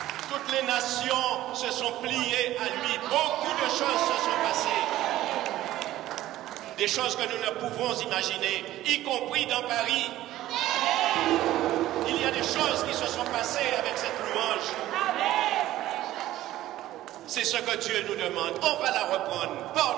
Toutes les nations se sont pliées à lui. Beaucoup de choses se sont passées. Des choses que nous ne pouvons imaginer, y compris dans Paris. Il y a des choses qui se sont passées avec cette louange. C'est ce que Dieu nous demande. On va la reprendre.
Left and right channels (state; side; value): quieter; left; 14.6 dB